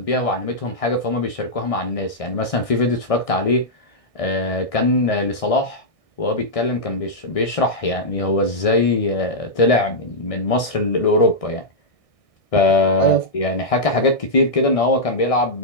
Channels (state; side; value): late; right; 1.6 ms